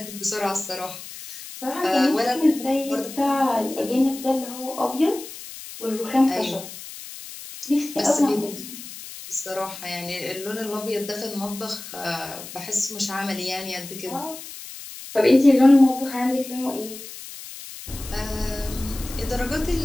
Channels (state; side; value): noise; left; hiss, 13 dB below the sound